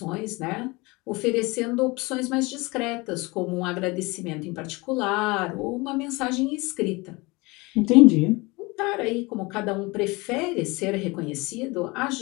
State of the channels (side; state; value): right; quieter; 24.6 dB